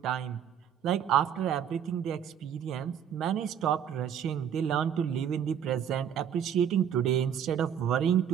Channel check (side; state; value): left; quieter; 8.8 dB